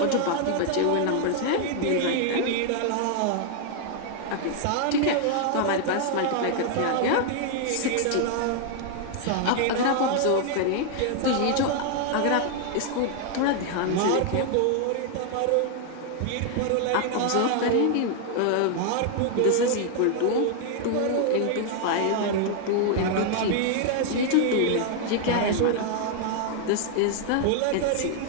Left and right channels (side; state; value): both; different; correlation 0.00